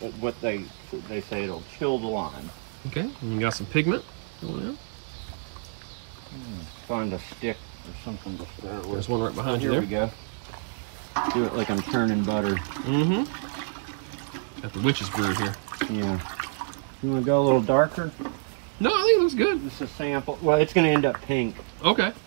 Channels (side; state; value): left; silent; digital silence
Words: what they say, it'll chill the lime. Okay, and we got some pigment. Oh, yeah. Find a stick or something to stir it with. There's one right behind you there. Here we go. Do it like I'm turning butter. Mm-hmm. Got the witch's brew here. Yeah. You want to go a little darker? No, I think it looks good. Just a sample. Well, it's going to end up pink. Okay.